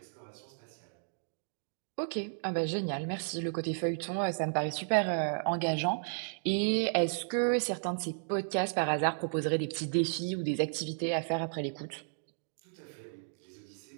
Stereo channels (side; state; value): left; silent; digital silence